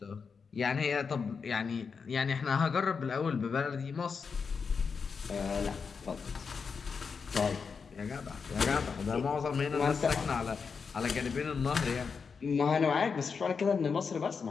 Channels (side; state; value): right; quieter; 5.5 dB